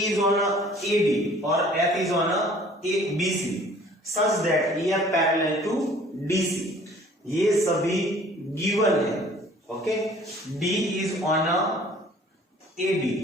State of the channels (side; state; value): both; normal; correlation 0.52